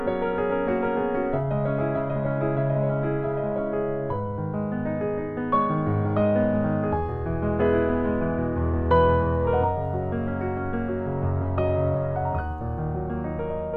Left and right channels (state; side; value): identical; both; correlation 1.00